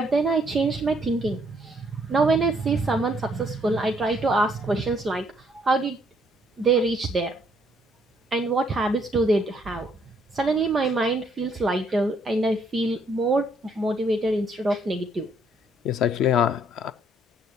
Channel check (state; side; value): normal; both; correlation 0.68